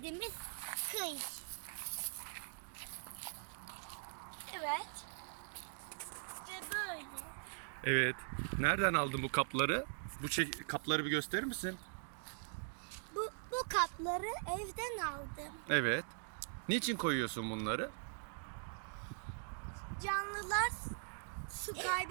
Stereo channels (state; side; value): silent; left; digital silence